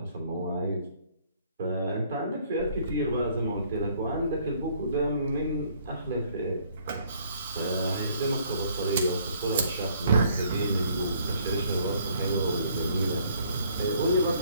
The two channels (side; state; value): both; inverted; correlation -0.63